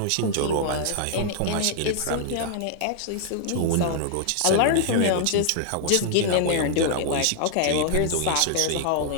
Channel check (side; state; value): both; different; correlation 0.00